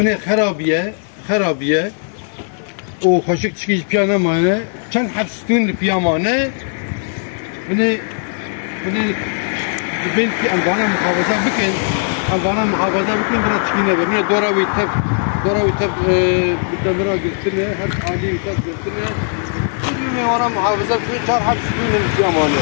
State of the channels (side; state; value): right; silent; 68 dB below the other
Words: خرابیه و خوشک چکیش پیانه مانه چند حبستون پیامانه بنی کی انوانه محافظه بکن برای چکینه بنی دوراوی تف بدمرا گرتنه هر عالی تف گرتنه بنی وانا محافظه بکن 4 حبستون